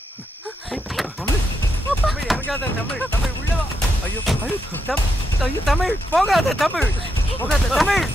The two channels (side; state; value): both; normal; correlation 0.82